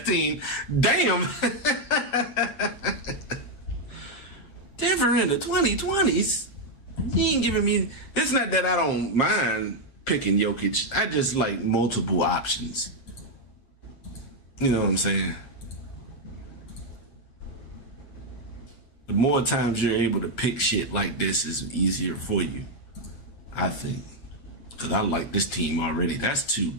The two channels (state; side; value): late; right; 8.7 ms